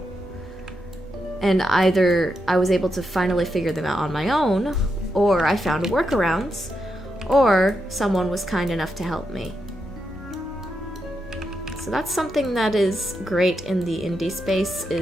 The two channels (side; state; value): both; normal; correlation 0.84